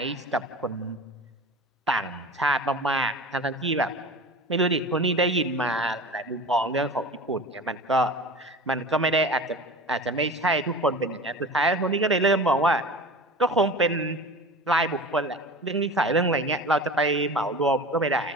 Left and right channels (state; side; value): normal; both; correlation 0.35